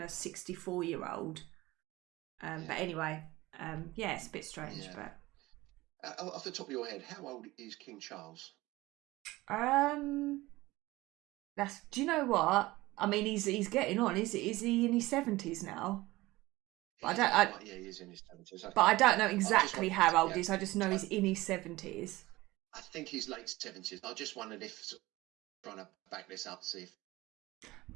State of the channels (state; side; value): quieter; left; 19.3 dB